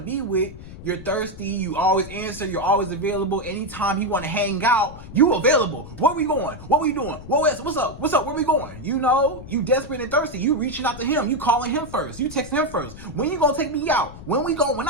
be with, you're thirsty, you always answer, you're always available. Anytime you want to hang out, you available. Where we going? What we doing? What's up? What's up? Where we going? You know, you desperate and thirsty. You reaching out to him. You calling him first. You texting him first. When you gonna take me out? When we go? When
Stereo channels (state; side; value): noise; left; rumble, 15 dB below the sound